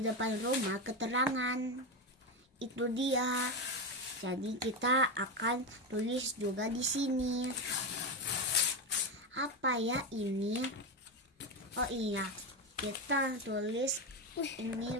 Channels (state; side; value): normal; both; correlation 0.13